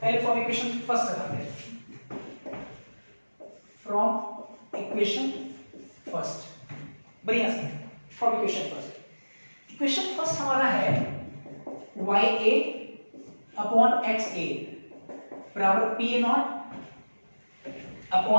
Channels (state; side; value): inverted; both; correlation -1.00